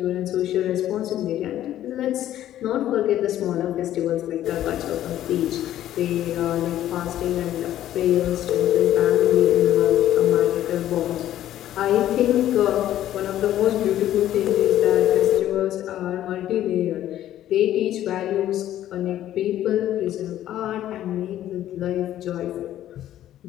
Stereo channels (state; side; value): quieter; right; 12.5 dB